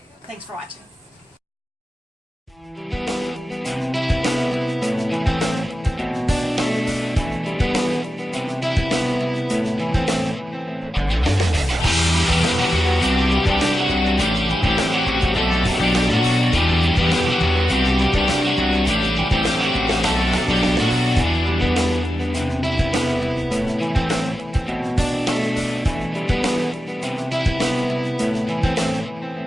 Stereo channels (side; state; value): both; normal; correlation 0.91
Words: Thanks for watching.